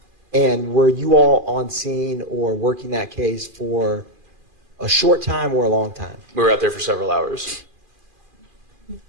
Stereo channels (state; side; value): late; left; 2.4 ms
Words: And were you all on scene or working that case for a short time or a long time? We were out there for several hours.